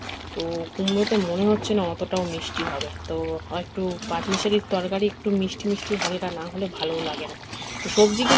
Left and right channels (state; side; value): identical; both; correlation 1.00